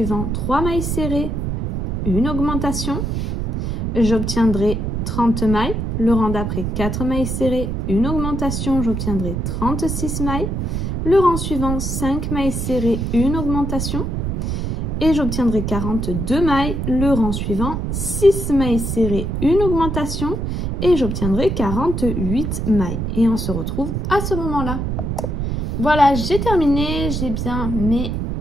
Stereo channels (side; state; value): right; noise; rumble, 2 dB below the sound